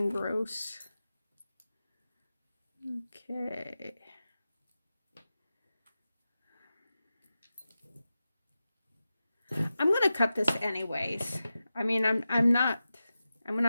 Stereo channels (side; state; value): both; inverted; correlation -0.93